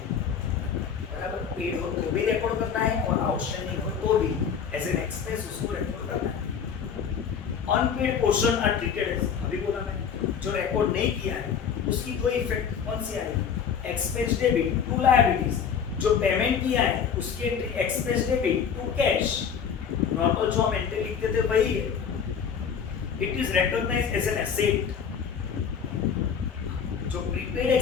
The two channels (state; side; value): quieter; right; 7.2 dB